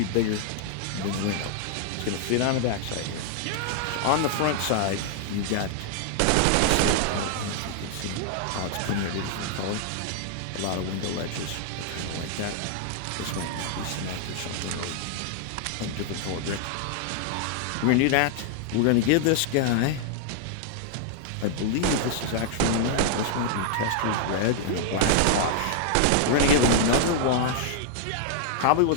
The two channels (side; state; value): both; different; correlation -0.01